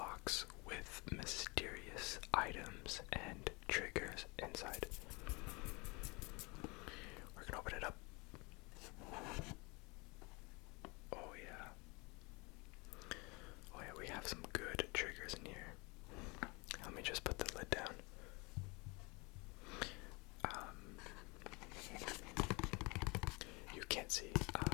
with mysterious items and triggers inside. We're gonna open it up. Oh yeah. Oh yeah, we have some good triggers in here. Let me just put the lid down. You can't see.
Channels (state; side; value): quieter; right; 27.4 dB